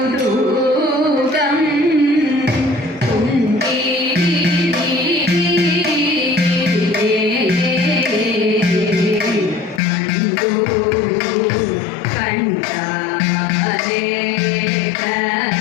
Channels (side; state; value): right; drops out; at 9.8 s